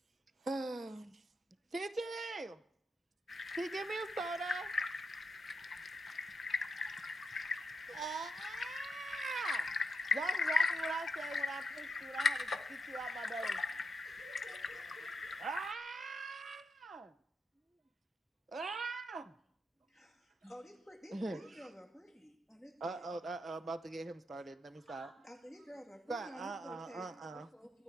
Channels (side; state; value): both; normal; correlation 0.82